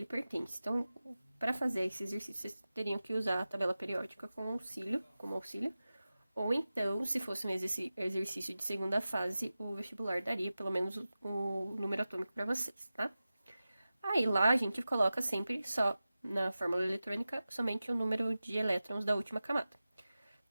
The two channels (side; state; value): both; inverted; correlation -0.95